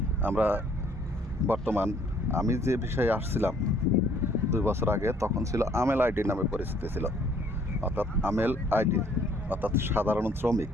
আমরা বর্তমান আমি যে বিষয়ে আসছিলাম 2 বছর আগে, তখন ছিল আমেল আইডি নামে পরিচিতি ছিল, অর্থাৎ আমেল আইডি অর্থাৎ সাধারণ শ্রমিক।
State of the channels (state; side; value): normal; both; correlation 0.61